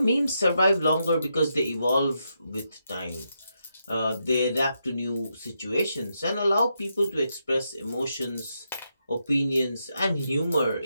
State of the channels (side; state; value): both; inverted; correlation -0.82